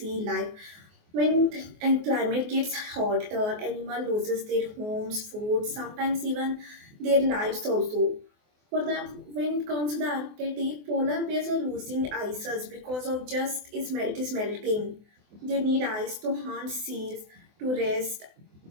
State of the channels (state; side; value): late; left; 24 ms